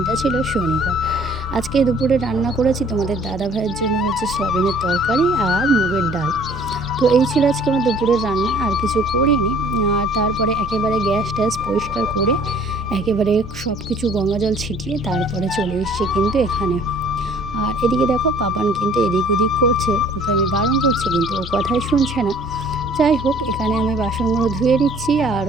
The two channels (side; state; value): both; normal; correlation 0.54